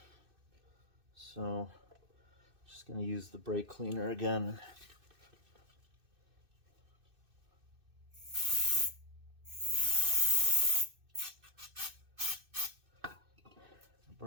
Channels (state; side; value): late; left; 2.6 ms